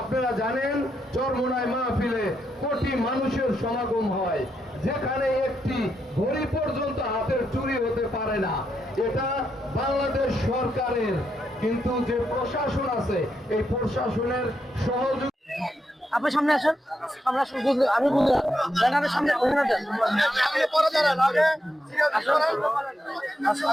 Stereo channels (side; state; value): both; normal; correlation 0.82